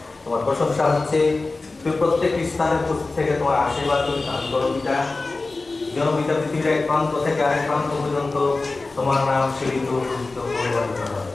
তোমার প্রশংসা হচ্ছে, তুমি প্রত্যেকটি স্থানে উপস্থিত থেকে তোমার আশীর্বাদ দান করো পিতা। যেন পিতা পৃথিবীর এক প্রান্ত থেকে আরেক প্রান্ত পর্যন্ত তোমার নাম সেবিত পূজিত পরিবারিত হয়।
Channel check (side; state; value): right; quieter; 3.5 dB